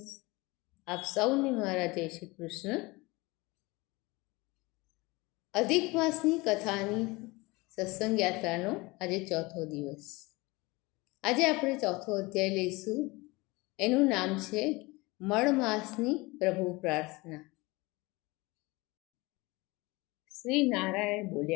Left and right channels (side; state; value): right; quieter; 23.4 dB